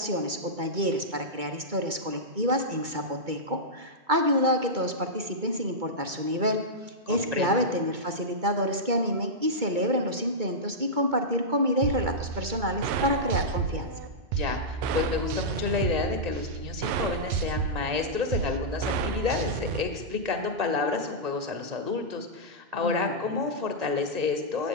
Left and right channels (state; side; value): late; left; 2.3 ms